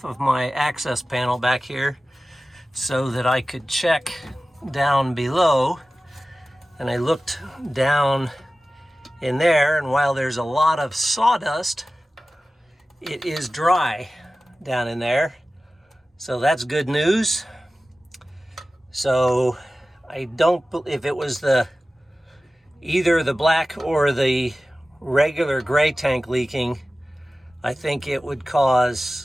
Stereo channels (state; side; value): normal; both; correlation 0.96